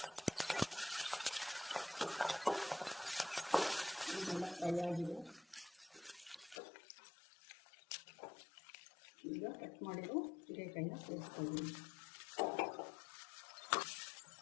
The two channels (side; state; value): right; drops out; at 6.6 s